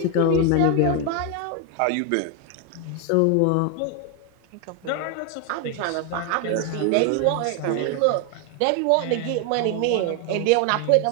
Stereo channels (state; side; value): different; both; correlation 0.01